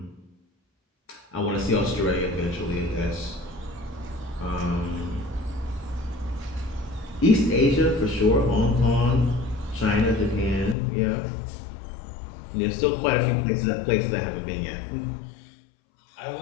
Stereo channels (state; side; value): drops out; right; at 10.8 s